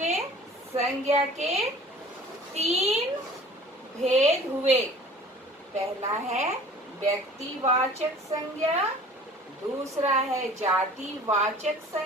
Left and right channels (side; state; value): both; normal; correlation 0.47